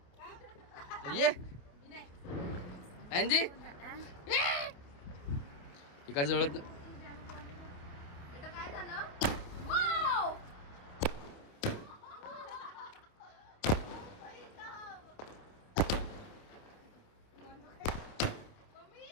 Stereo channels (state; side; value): late; right; 28 ms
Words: ये अँजी एका जळत.